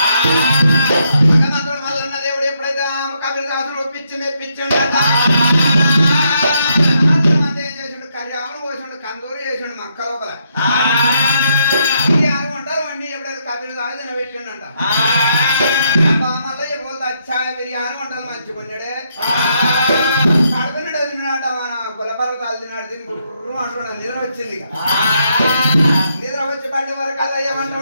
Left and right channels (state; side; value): inverted; both; correlation -0.76